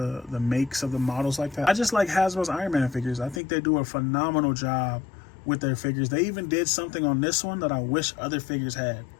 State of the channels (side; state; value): right; drops out; at 3.4 s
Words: makes of the models like that. I just like Hasbro's Iron Man figures. I think they do a phenomenal job with their figures. They even did something on this one that I wish other figures had.